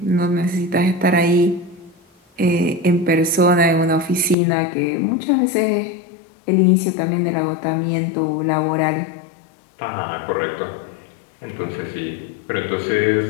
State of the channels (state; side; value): drops out; right; at 4.4 s